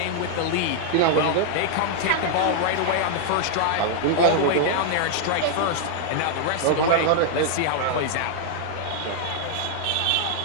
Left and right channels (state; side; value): different; both; correlation 0.00